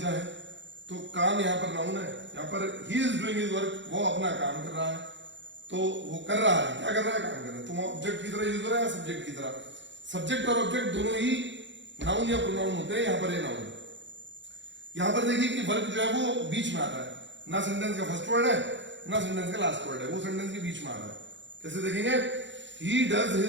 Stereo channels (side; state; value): left; late; 0.53 ms